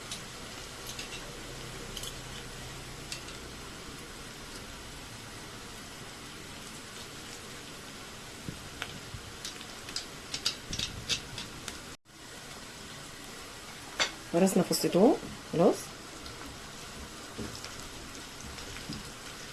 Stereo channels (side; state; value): both; identical; correlation 1.00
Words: ورسنا فص توم. خلاص